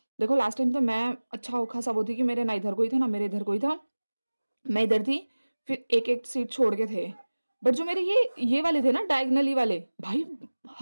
देखो लास्ट टाइम तो मैं अच्छा खासा वो थी कि मेरे ना इधर कोई था ना मेरे इधर कोई था, मैं इधर थी, फिर एक-एक सीट छोड़ के थे। बट जो मेरे ये वाले थे ना डायगोनली वाले, भाई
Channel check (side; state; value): both; inverted; correlation -1.00